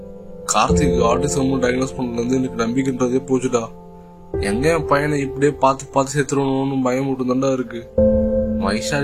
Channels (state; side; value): identical; both; correlation 1.00